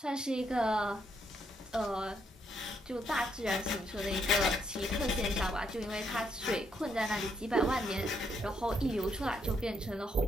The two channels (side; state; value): both; normal; correlation 0.75